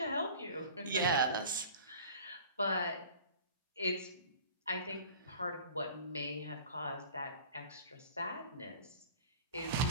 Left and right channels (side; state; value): both; inverted; correlation -0.41